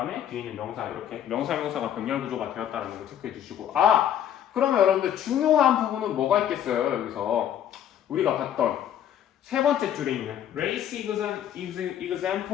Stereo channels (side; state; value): right; quieter; 10.3 dB